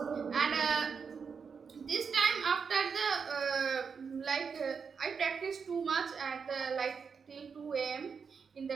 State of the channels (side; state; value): left; quieter; 5.9 dB